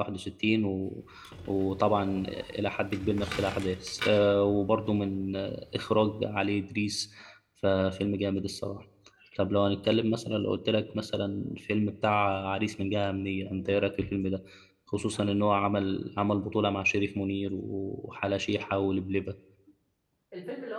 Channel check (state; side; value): identical; both; correlation 1.00